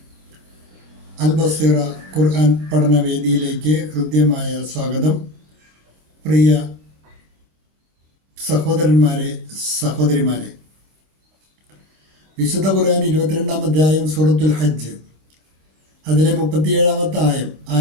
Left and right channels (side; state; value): left; late; 26 ms